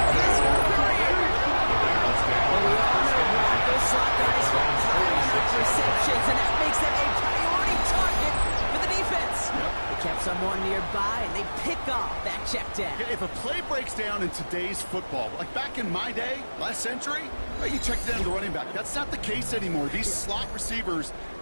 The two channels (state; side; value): inverted; both; correlation -1.00